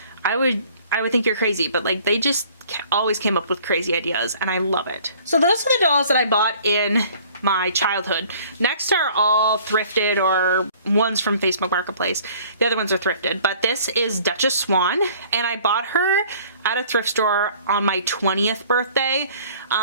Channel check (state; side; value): inverted; both; correlation -0.53